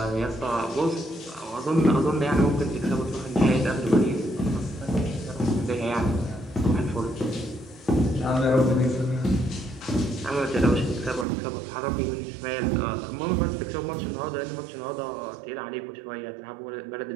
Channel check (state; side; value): drops out; left; at 11.2 s